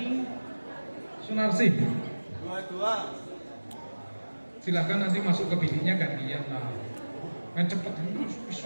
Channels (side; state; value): both; inverted; correlation -1.00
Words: Sunarsih. Dua. Silahkan nanti masuk ke biliknya gantian lah. Main cepet